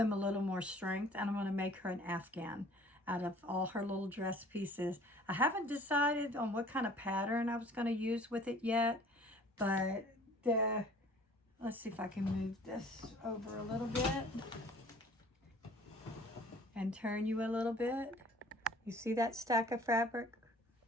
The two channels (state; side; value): normal; both; correlation 0.51